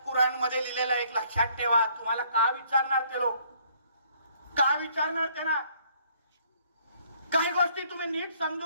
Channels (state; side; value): inverted; both; correlation -0.63